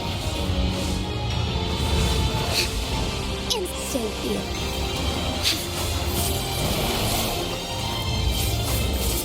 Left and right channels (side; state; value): both; identical; correlation 1.00